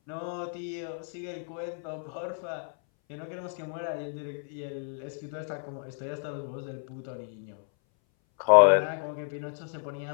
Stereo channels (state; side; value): silent; right; 57 dB below the other